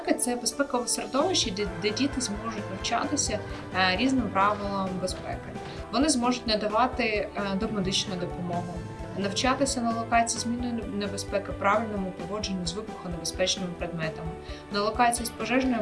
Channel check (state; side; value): identical; both; correlation 1.00